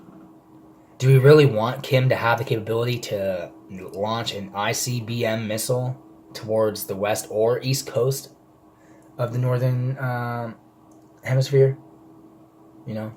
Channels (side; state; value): both; identical; correlation 1.00